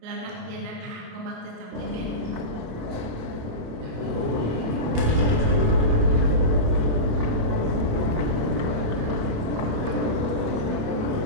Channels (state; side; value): late; left; 27 ms